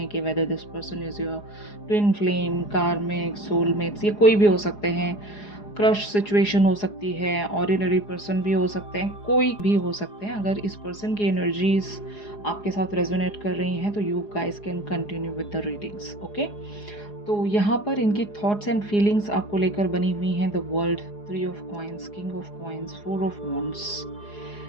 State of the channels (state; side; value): late; right; 4.8 ms